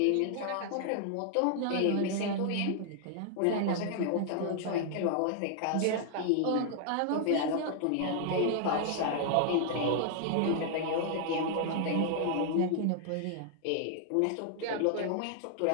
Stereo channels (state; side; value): different; both; correlation 0.00